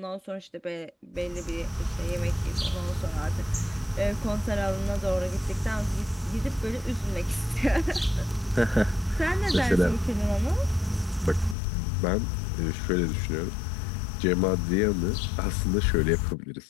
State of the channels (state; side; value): drops out; right; at 11.6 s